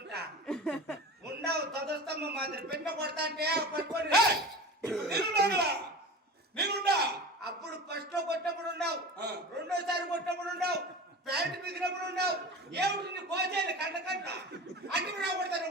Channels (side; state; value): both; normal; correlation 0.33